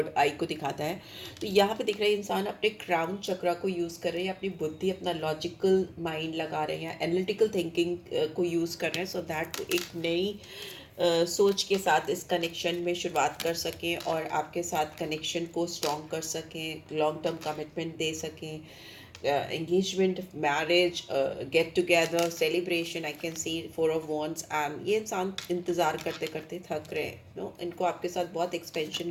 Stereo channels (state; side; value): identical; both; correlation 1.00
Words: आई को दिखाता है। तो यहाँ पे दिख रहा है इंसान अपने क्राउन चक्रा को यूज़ कर रहे हैं, अपनी बुद्धि, अपना लॉजिकल माइंड लगा रहे हैं, एनालिटिकल थिंकिंग को यूज़ कर रहे हैं, सो दैट एक नई सोच के साथ इस कनेक्शन में शुरुआत कर सकें और आपके साथ कनेक्शन को स्ट्रॉन्ग कर सकें, लॉन्ग टर्म कमिटमेंट दे सकें। Engagement, marriage, get together, celebration, I can see 4 of Wands। And ये इंसान इंतज़ार करते करते थक रहे हैं, नो, इनको आपके साथ बहुत एक्सपेंशन,